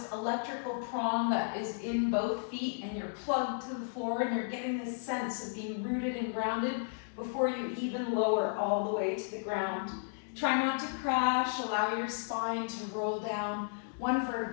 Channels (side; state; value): right; silent; 55 dB below the other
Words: electrical prong that is in both feet, and you're plugged to the floor, and you're getting this sense of being rooted and grounded before you even lower all the way to the ground. Try not to crash. Allow your spine to roll down one